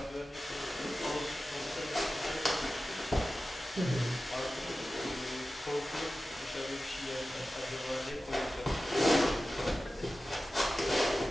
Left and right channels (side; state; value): both; normal; correlation 0.94